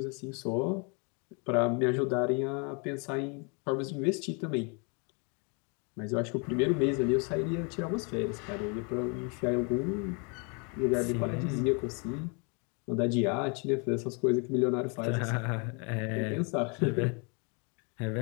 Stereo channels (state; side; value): quieter; right; 34.9 dB